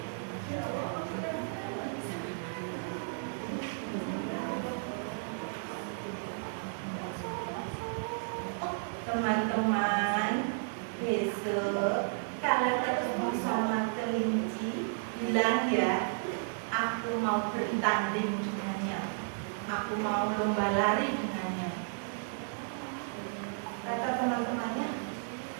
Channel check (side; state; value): left; silent; 56 dB below the other